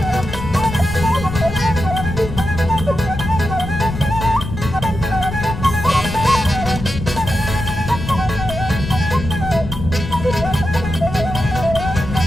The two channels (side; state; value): left; noise; rumble, 7 dB below the sound